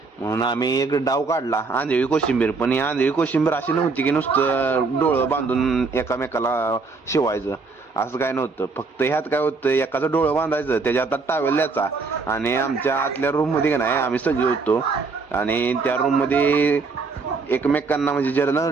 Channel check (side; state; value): left; quieter; 4.3 dB